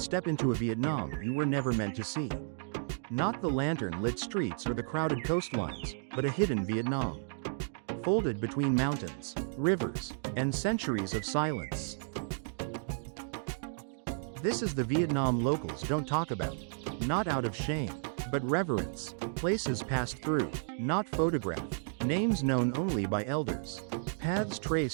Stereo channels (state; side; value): silent; left; digital silence